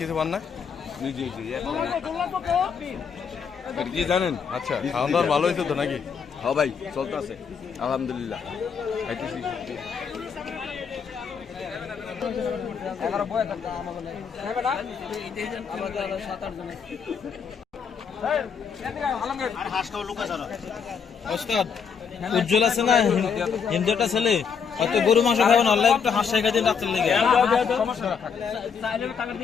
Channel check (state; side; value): quieter; right; 6.5 dB